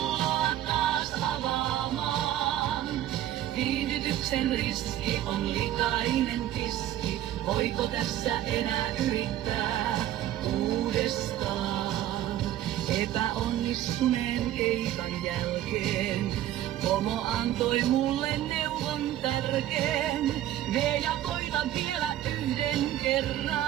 taas avaamaan. Viihdytyksen riski on likainen tiski, voiko tässä enää yrittää uudestaan? Epäonnistuneen keikan jälkeen pomo antoi mulle neuvon tärkeen. Vie ja koita vielä yhden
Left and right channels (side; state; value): left; quieter; 12.8 dB